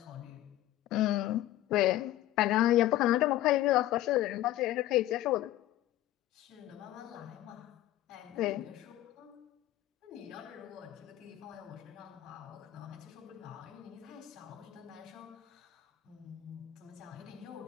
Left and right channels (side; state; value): right; quieter; 14.5 dB